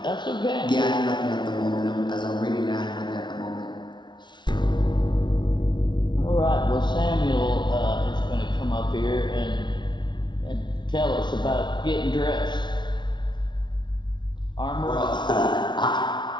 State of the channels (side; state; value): right; late; 0.22 ms